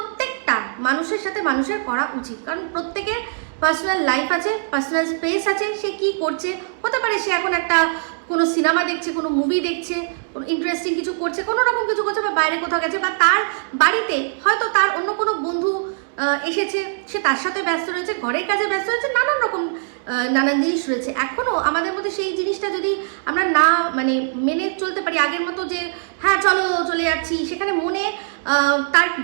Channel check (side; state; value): left; silent; 65 dB below the other